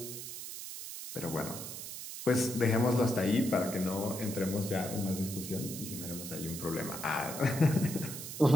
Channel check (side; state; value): right; noise; hiss, 8 dB below the sound